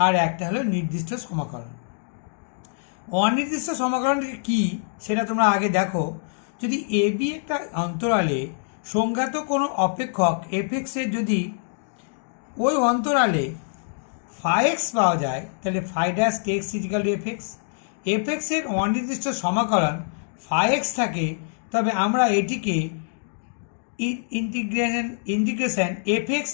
আর একটা হলো নির্দিষ্ট সমকলন। অনির্দিষ্ট সমকলনটি কী সেটা তোমরা আগে দেখো। যদি এ বি একটা অন্তরালে সংজ্ঞাত কোনো অপেক্ষক এফএক্সের যদি ওই অন্তরালে ফাই এক্স পাওয়া যায়, তাহলে phi dash x equal to f x. এফএক্সের অনির্দিষ্ট সমাকলন ফাই এক্স থাকে, তবে আমরা এটিকে ইন্টিগ্রেশন এফএক্স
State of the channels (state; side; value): silent; right; digital silence